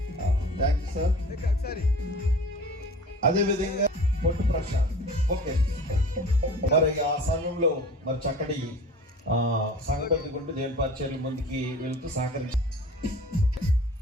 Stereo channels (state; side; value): normal; both; correlation 0.42